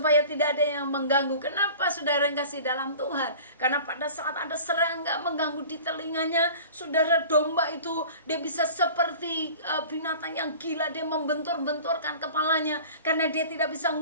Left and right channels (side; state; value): both; inverted; correlation -0.42